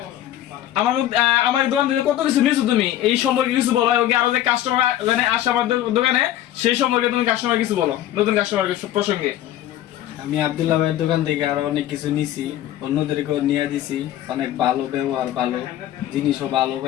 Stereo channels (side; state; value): right; quieter; 12.7 dB